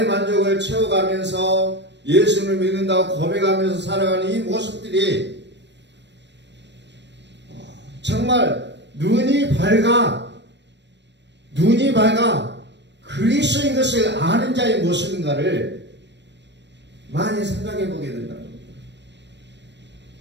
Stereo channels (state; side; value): late; left; 0.51 ms